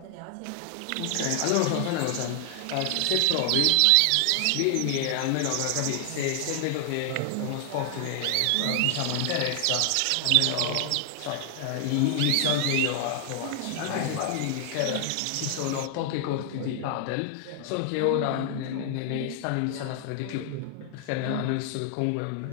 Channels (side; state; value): both; different; correlation 0.00